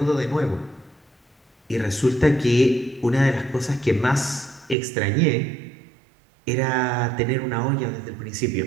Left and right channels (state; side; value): drops out; left; at 4.8 s